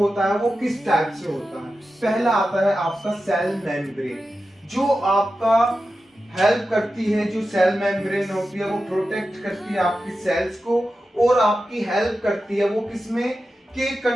है वो किस टाइप से होता है। पहला आता है आपका सेल मेम्ब्रेन, जो आपका हेल्प करती है। जो सेल मेम्ब्रेन होती है वो प्रोटेक्ट करती है आपकी सेल्स को, और आपकी हेल्प करती है वो किसमें, कि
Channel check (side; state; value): both; normal; correlation 0.92